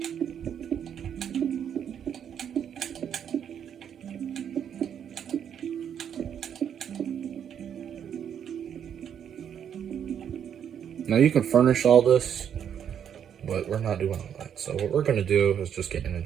Now you can furnish all this, but we're not doing all that. So what we're gonna do is just get an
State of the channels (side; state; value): left; quieter; 8.7 dB